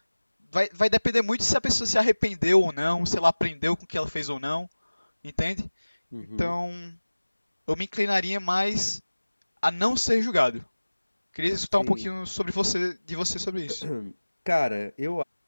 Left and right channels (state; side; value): inverted; both; correlation -1.00